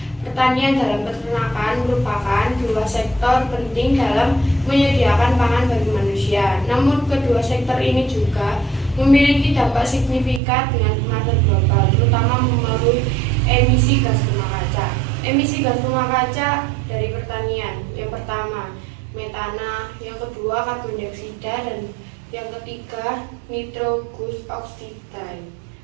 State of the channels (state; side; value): drops out; left; at 10.4 s